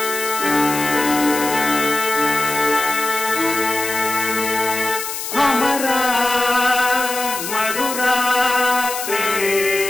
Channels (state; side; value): noise; left; hiss, 6 dB below the sound